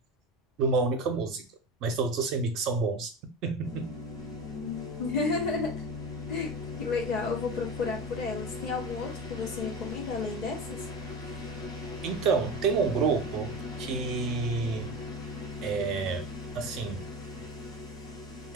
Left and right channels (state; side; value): normal; both; correlation 0.27